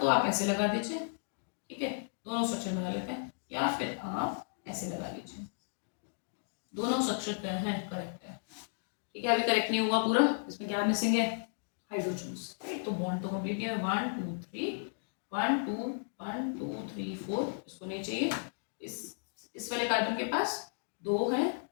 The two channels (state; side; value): silent; right; digital silence